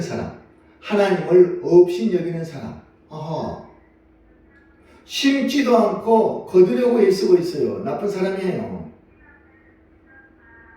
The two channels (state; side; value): identical; both; correlation 1.00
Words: 하나님을 업신여기는 사람. 심지도 않고 거두려고 애쓰고 있어요. 나쁜 사람이에요.